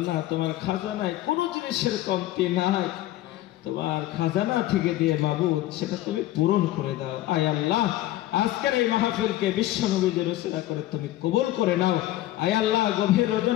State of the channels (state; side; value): quieter; right; 15.2 dB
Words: না, তোমার খাজানায় কোনো জিনিসের কমতি নাই। তোমার খাজানা থেকে দিয়ে মাবুদ সেটা তুমি পূরণ করে দাও। আয় আল্লাহ, আজকের এই মাহফিলকে বিশ্ব নবীদের ওসিলা করে তুমি কবুল করে নাও। আয় আল্লাহ, গভীর